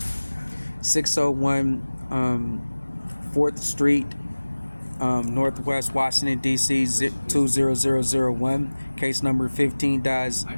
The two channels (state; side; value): inverted; both; correlation -1.00